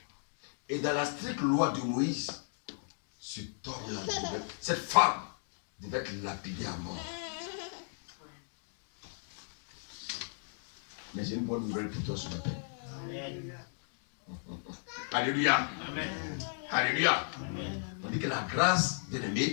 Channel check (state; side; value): silent; right; digital silence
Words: Et dans la stricte loi de Moïse, cette femme devait être lapidée à mort. Mais j'ai une bonne nouvelle pour toi ce matin. Alléluia. Amen. Alléluia. Amen. On dit que la grâce,